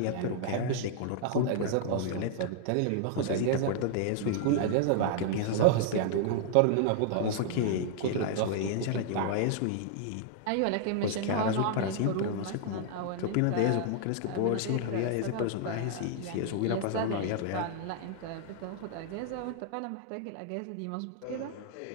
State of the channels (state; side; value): different; both; correlation 0.00